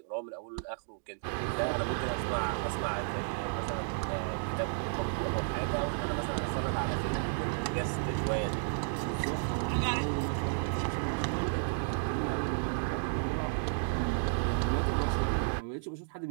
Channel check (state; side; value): silent; left; digital silence